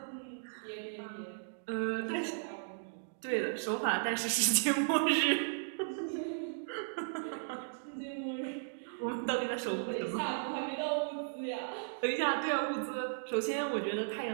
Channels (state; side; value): silent; left; digital silence